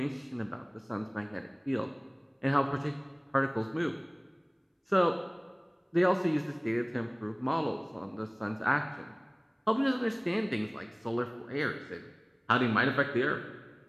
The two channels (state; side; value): identical; both; correlation 1.00